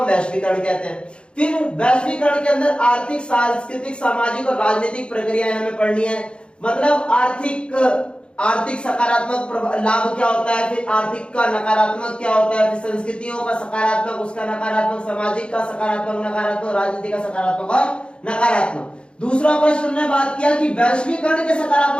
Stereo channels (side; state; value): right; late; 0.055 ms